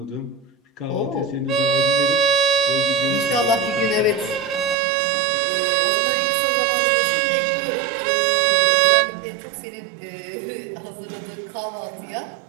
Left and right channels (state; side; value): drops out; left; at 4.8 s